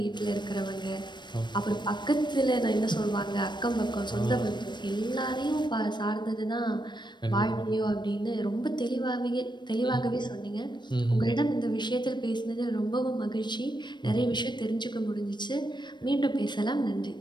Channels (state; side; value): late; right; 0.22 ms